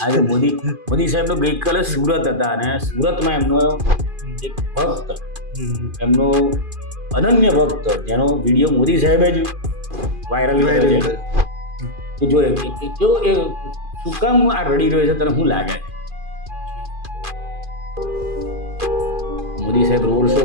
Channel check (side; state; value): left; late; 2.4 ms